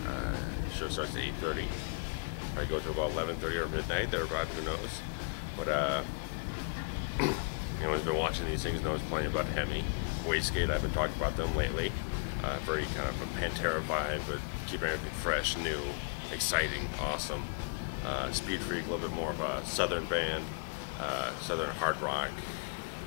Show starts at 8:30. Probably go to about 11:30 or midnight. They're about, who knows. But anyone's been watching these things knows plenty about HEMI. Wastegate, I've been talking about them lately. Very kind of a Pantera vibe, but keeping everything fresh, new, exciting, awesome. Speed Freak, a little bit more of a southern band, southern hard rock,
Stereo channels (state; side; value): quieter; right; 38.9 dB